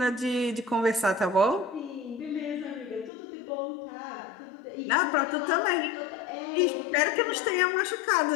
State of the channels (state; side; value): drops out; right; at 3.1 s